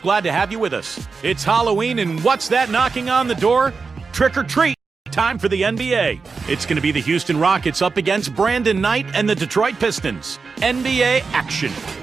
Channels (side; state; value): left; quieter; 4.7 dB